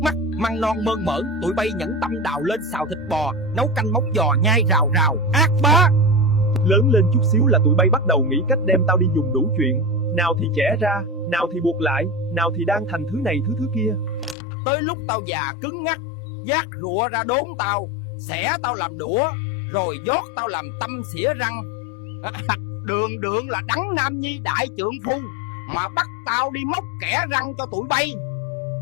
mắt, măng non mơn mởn, tụi bay nhẫn tâm đào lên xào thịt bò, nấu canh móng giò nhai rào rào, ác bá. Lớn lên chút xíu là tụi bay bắt đầu nghĩ cách đem tao đi dùng đủ chuyện. Nào thì chẻ ra, nào thì buộc lại, nào thì đan thành thứ này thứ kia. Tới lúc tao già cứng ngắc, vác rụa ra đốn tao, xẻ tao làm đũa, rồi dót tao làm tâm xỉa răng. Đường đường là Đấng Nam Nhi đại trượng phu mà bắt tao đi móc kẻ răng cho tụi bay.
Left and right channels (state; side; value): drops out; right; at 14.4 s